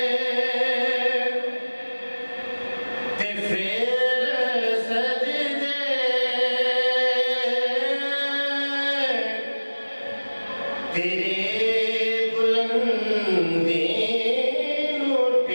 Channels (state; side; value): inverted; both; correlation -1.00